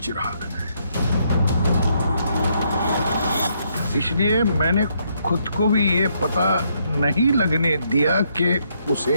चिराग है, इसलिए मैंने खुद को भी ये पता नहीं लगने दिया कि उसे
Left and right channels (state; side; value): inverted; both; correlation -0.73